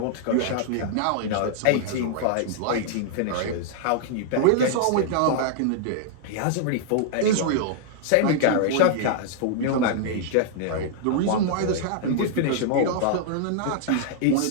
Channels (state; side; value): different; both; correlation -0.01